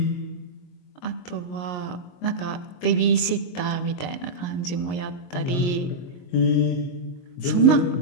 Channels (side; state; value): right; late; 22 ms